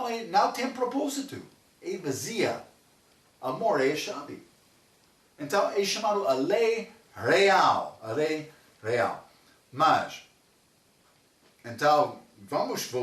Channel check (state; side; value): identical; both; correlation 1.00